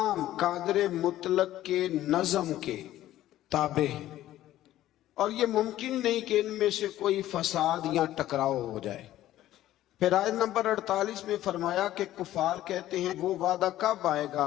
قادر مطلق کے نظم کے تابع ہیں، اور یہ ممکن نہیں کہ ان میں سے کوئی فساد یا ٹکراؤ ہو جائے۔ پھر آیت نمبر 48 میں فرمایا کہ کفار کہتے ہیں وہ وعدہ کب آئے گا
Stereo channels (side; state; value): right; quieter; 13.9 dB